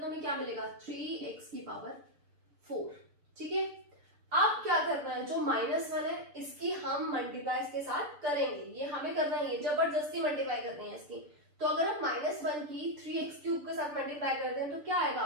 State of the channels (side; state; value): left; late; 6.8 ms